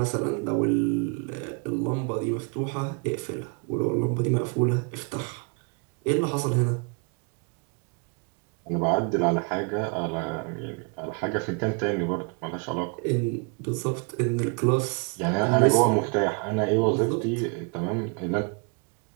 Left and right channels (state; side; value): quieter; left; 35.5 dB